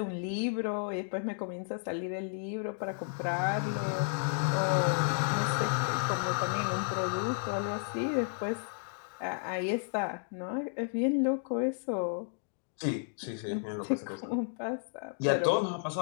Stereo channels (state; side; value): silent; right; digital silence